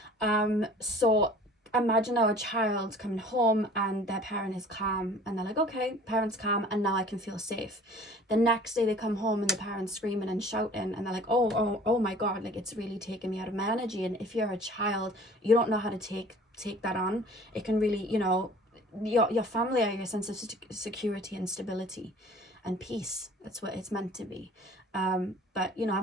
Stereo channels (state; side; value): normal; both; correlation 0.49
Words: So imagine now a child coming home and their parent is calm, and they're like, okay, parent's calm and now I can feel safe. The next day they come home and the parent's screaming and shouting, and they're like, oh my god, like it's really taking me out of my energy. And if you're a child, you don't know how to take that on. It can really, you know, your family are your sense of security and stability and peace. That's what it's meant to be. But you know,